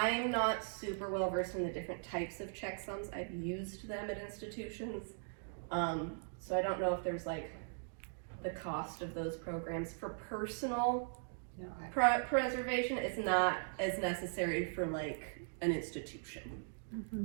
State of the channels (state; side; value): silent; left; digital silence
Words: not super well versed in the different types of checksums. I've used them at institutions. So I don't know if there's like the cost of those programs. For personal preservation, it's not as necessary for like an institution.